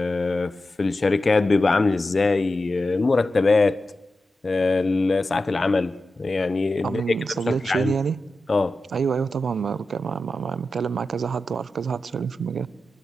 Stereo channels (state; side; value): normal; both; correlation 0.91